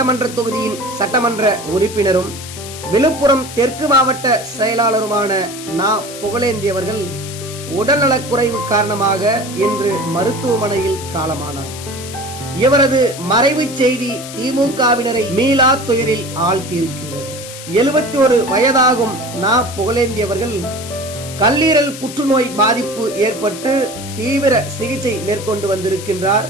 தொகுதியின் சட்டமன்ற உறுப்பினரும் விழுப்புரம் தெற்கு மாவட்ட செயலாளருமான நா. புகழேந்தி அவர்கள் உடல்நலக்குறைவு காரணமாக இன்று மருத்துவமனையில் காலமானார். இவரது மறைவு செய்தி திமுகவினரை மீளா துயரில் ஆழ்த்தியிருக்கின்றது. 71 வயதாகும் நா. புகழேந்தி அவர்கள் கல்லீரல் புற்றுநோய் பாதிப்பு ஏற்பட்டு தீவிர சிகிச்சை மேற்கொண்டு வந்திருக்கின்றார்.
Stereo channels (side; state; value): left; noise; hiss, 12 dB below the sound